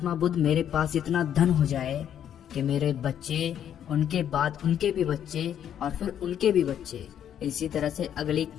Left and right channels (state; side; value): quieter; right; 9.7 dB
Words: बुद्ध, मेरे पास इतना धन हो जाए कि मेरे बच्चे, उनके बाद उनके भी बच्चे और फिर उनके भी बच्चे, इसी तरह से अगली